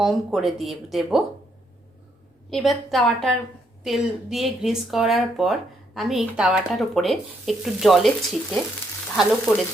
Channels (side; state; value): both; normal; correlation 0.74